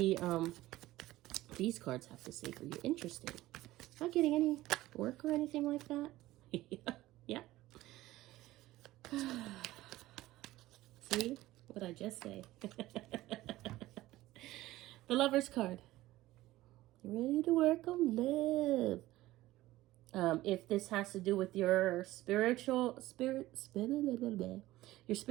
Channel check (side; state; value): left; quieter; 16.8 dB